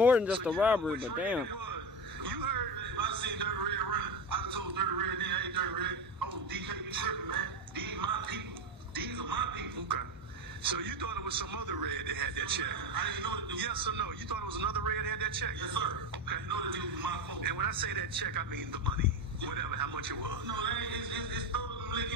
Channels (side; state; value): both; normal; correlation 0.18